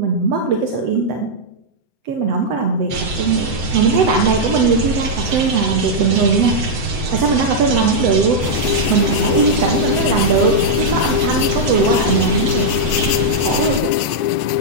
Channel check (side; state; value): left; late; 7.9 ms